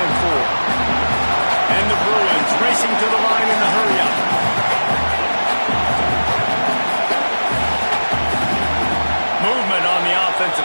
4. And the Bruins racing to the line in the hurry-up. Movement on the offensive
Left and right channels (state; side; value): inverted; both; correlation -1.00